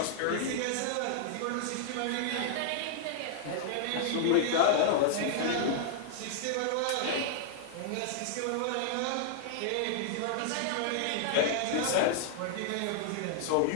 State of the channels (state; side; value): different; both; correlation -0.01